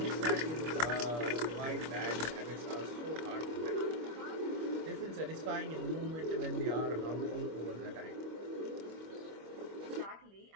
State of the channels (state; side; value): late; left; 25 ms